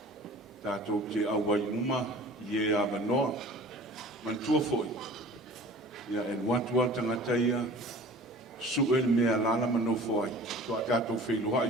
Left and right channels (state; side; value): normal; both; correlation 0.43